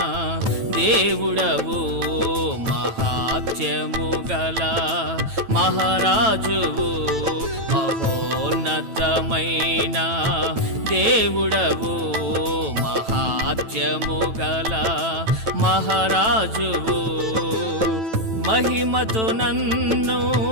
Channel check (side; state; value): left; late; 9.1 ms